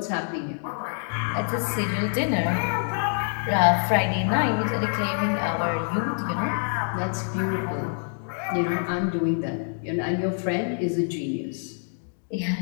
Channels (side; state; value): right; silent; 60 dB below the other